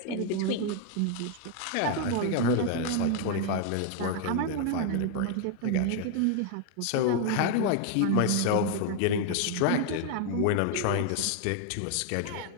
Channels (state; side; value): different; both; correlation 0.00